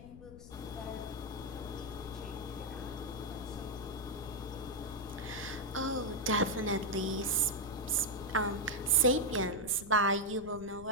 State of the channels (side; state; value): left; noise; rumble, 16 dB below the sound